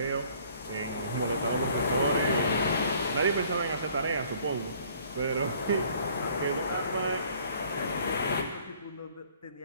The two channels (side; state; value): both; inverted; correlation -0.57